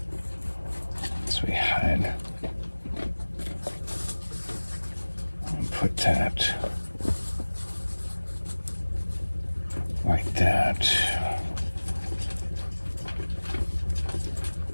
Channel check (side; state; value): both; inverted; correlation -1.00